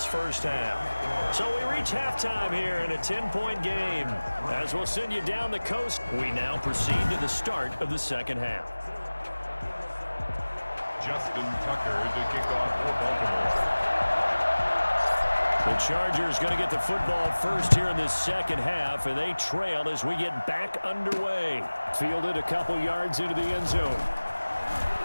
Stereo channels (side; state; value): both; inverted; correlation -1.00